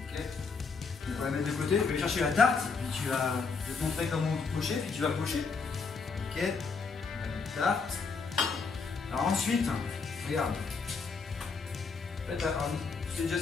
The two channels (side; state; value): right; quieter; 4.8 dB